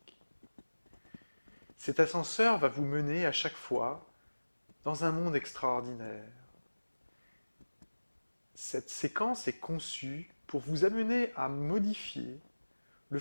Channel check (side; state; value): both; inverted; correlation -1.00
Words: Cet ascenseur va vous mener à chaque fois dans un monde extraordinaire. Cette séquence est conçue pour vous amener à modifier le